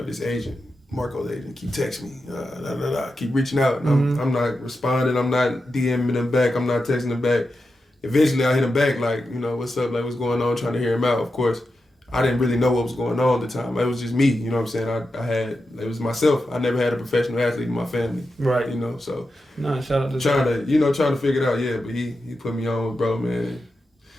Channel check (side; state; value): both; normal; correlation 0.89